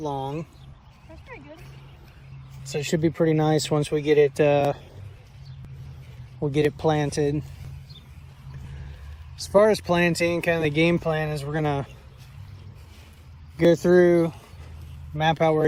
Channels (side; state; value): both; identical; correlation 1.00